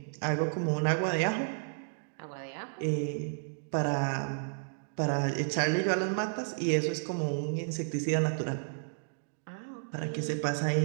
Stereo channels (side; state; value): left; silent; digital silence